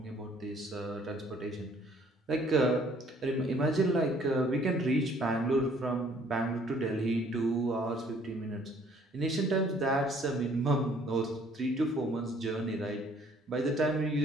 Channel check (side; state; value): both; normal; correlation 0.60